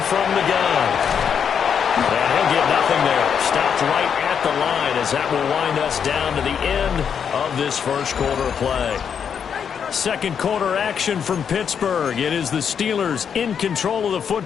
from the gun. And he'll get nothing there. Stopped right at the line as that will wind us down to the end of this first quarter of play. Second quarter action from Pittsburgh. It is the Steelers in control of the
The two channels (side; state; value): right; quieter; 7.4 dB